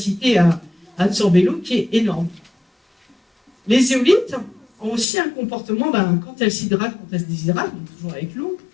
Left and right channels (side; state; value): right; drops out; at 5.1 s